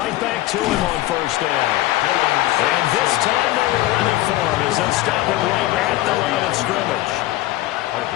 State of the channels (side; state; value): right; quieter; 16.5 dB